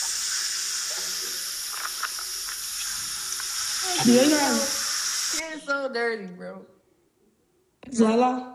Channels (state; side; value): identical; both; correlation 1.00